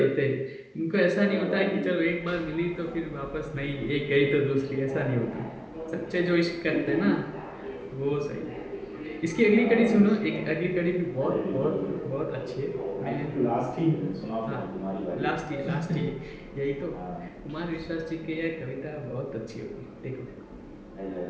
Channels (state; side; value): identical; both; correlation 1.00